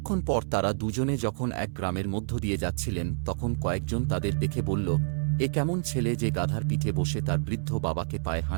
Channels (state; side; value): silent; left; 59 dB below the other